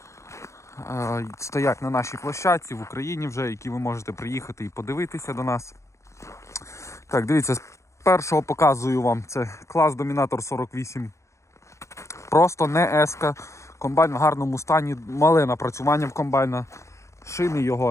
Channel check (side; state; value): right; late; 0.14 ms